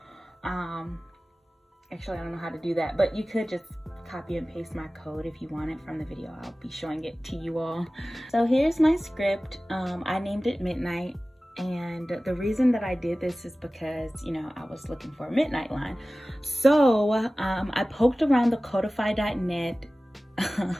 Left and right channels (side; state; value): both; normal; correlation 0.97